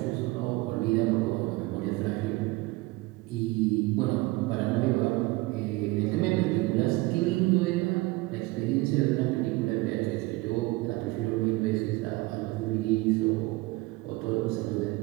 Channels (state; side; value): quieter; left; 21.7 dB